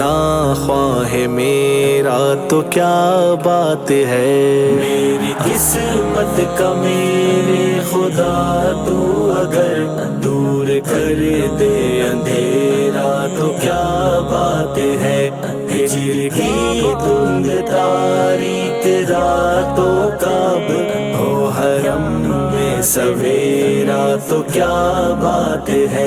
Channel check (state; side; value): identical; both; correlation 1.00